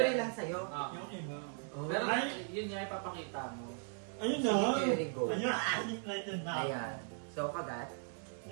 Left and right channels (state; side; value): silent; left; 53 dB below the other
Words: yan. lang sa'yo. Yung iba. Oh. Pero Ay. yun nga ipapakita mo. Ayun na. Sige, Jerry, go. Ayun, ating natin na. Ayan. So, kagat.